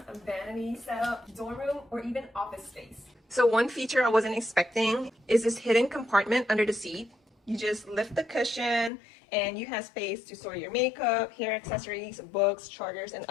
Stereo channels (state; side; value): drops out; right; at 8.9 s